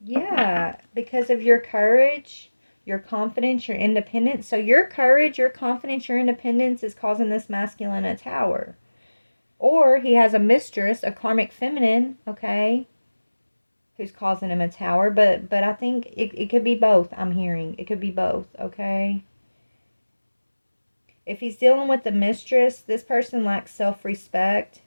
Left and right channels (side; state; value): both; inverted; correlation -1.00